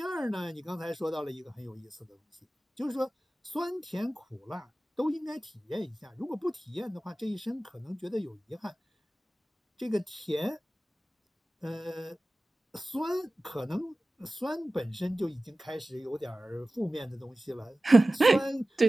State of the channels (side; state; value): both; normal; correlation 0.97